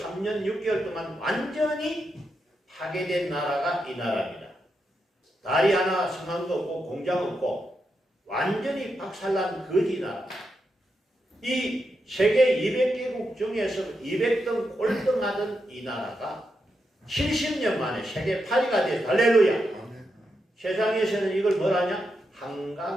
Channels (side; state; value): both; normal; correlation 0.85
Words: 6개월 동안 완전히 파괴된 나라가 이 나라입니다. 다리 하나 성함도 없고 공장 없고 완전히 박살난 거지 나라. 이 세계 200개국 중에서 200등 꼴등하던 이 나라가 70년 만에 세계 8위가 돼서 할렐루야. 세상에서는 이걸 뭐라냐?